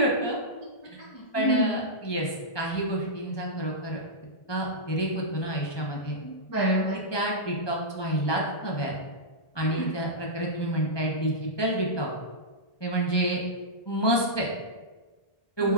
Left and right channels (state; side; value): late; right; 1.2 ms